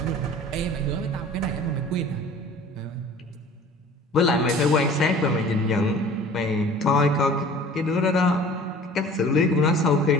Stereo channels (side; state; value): both; normal; correlation 0.46